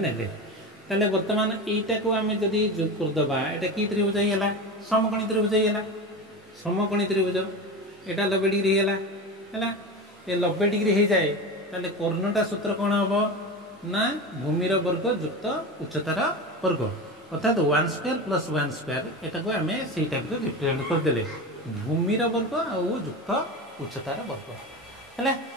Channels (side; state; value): both; normal; correlation 0.26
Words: ताले वर्तमान एटा को आम जदि जोग करदबा एटा कि त्रिभुज है समकोणी त्रिभुज है समकोणी त्रिभुज एटा 90 डिग्री है ये 90 डिग्री हो जाए ताले कर्णटा सूत्र कौन हम ना भूमिर वर्ग युक्त उच्चतार वर्ग अर्थात 1 स्क्वायर प्लस 1 स्क्वायर एटा को आम से टाइप रिप्रेजेंट करदे भूमिर वर्ग आयुक्त उच्चतार वर्ग है